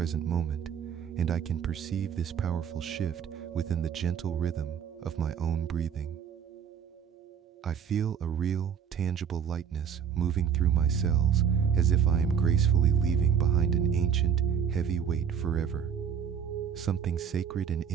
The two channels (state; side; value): quieter; left; 7.8 dB